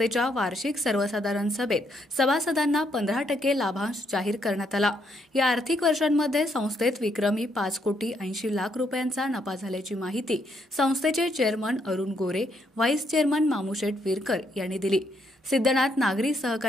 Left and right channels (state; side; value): normal; both; correlation 0.74